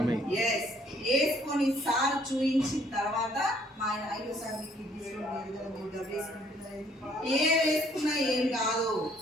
ఎస్, వేసుకొని సార్ చూయించిన తర్వాత మా ఆయన అయ్యో సార్ మీకు ఏ వేసుకున్నా ఏం కాదు,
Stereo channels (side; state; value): both; normal; correlation 0.63